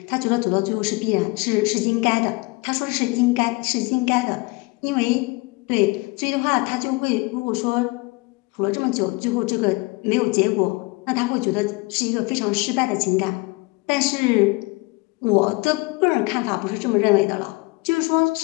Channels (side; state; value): right; quieter; 25.9 dB